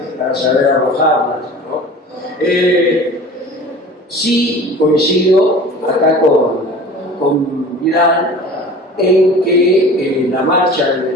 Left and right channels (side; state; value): both; normal; correlation 0.41